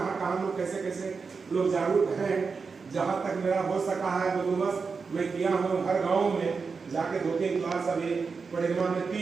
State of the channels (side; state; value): left; quieter; 5.0 dB